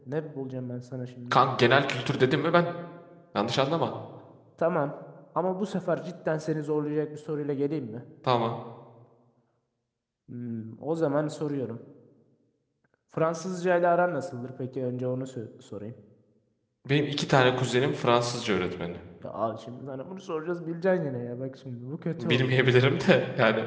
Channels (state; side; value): identical; both; correlation 1.00